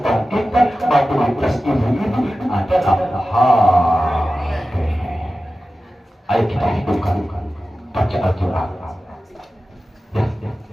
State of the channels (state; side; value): normal; both; correlation 0.95